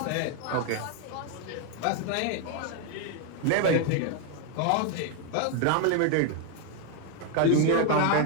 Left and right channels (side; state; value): both; different; correlation 0.01